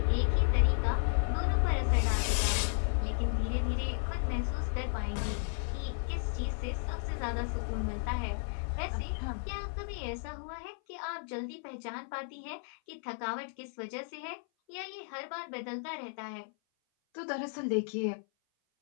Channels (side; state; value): right; silent; 55 dB below the other